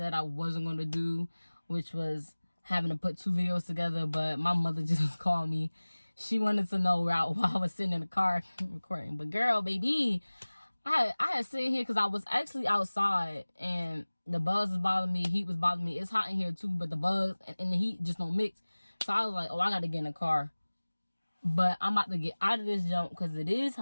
I wasn't going to do, which was having to put 2 videos together, but my mother just called me. She wanted to know while I was sitting in the car recording. But girl, baby, I had sitting here because I was actually outside, and the bugs was bothering me, heat was bothering me. It's hot in here too, but the bugs and the heat just don't mix. So I was like, I got to get in the car. But I'm about to get out of this jump because it is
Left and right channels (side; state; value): both; inverted; correlation -1.00